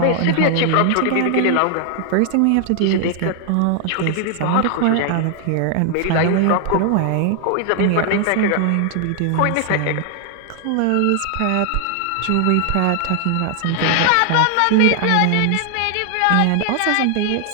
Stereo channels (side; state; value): both; different; correlation 0.00